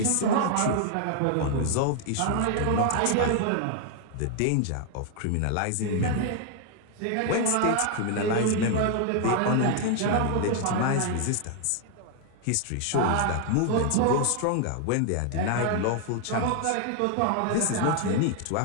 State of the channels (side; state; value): both; different; correlation 0.00